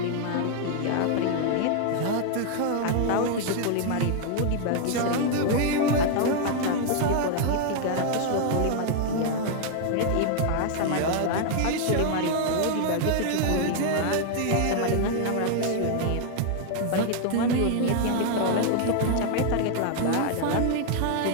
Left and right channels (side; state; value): both; different; correlation 0.00